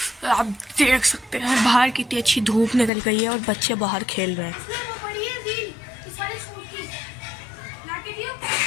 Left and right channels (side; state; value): right; drops out; at 2.9 s